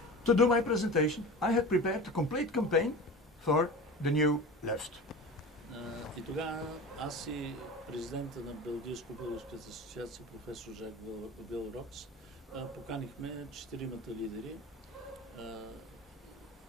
To do my presentation, I had prepared a complete campaign for the new left. И тогава аз и президента на Белгийско-българската асоциация, професор Жак Вилрокс, поканихме 4-мата лидери.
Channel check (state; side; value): normal; both; correlation 0.33